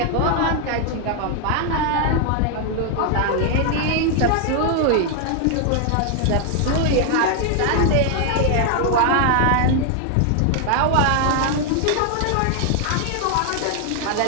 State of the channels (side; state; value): both; different; correlation 0.00